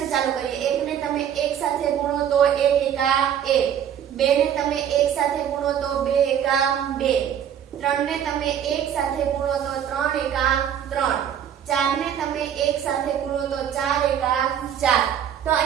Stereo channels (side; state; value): left; quieter; 9.3 dB